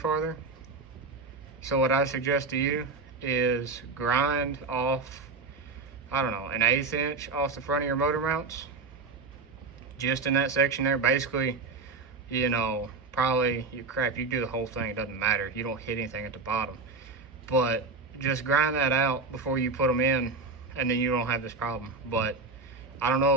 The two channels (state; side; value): quieter; left; 4.0 dB